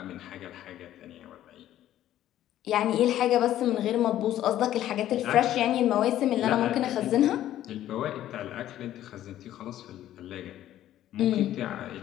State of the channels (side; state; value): right; quieter; 12.7 dB